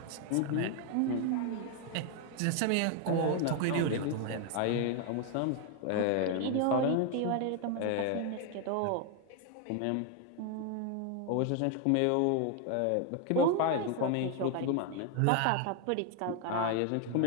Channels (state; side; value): different; both; correlation 0.01